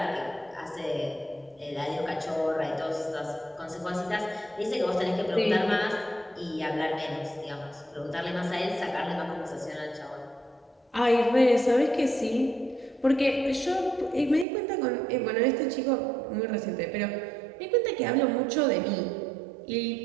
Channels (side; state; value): left; drops out; at 14.5 s